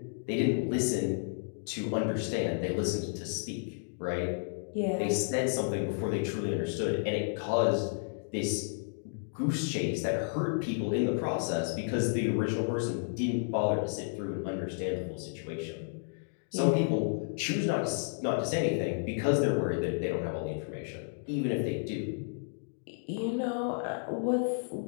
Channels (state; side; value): silent; right; digital silence